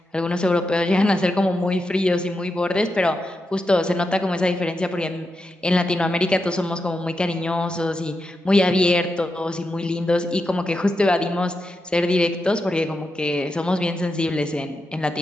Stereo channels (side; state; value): both; normal; correlation 0.87